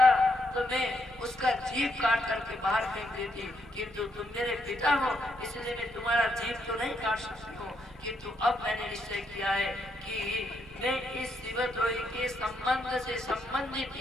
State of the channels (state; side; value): noise; left; rumble, 24 dB below the sound